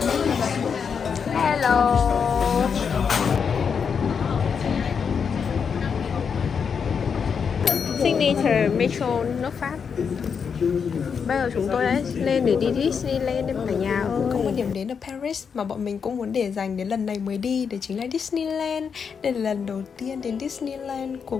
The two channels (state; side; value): quieter; right; 6.4 dB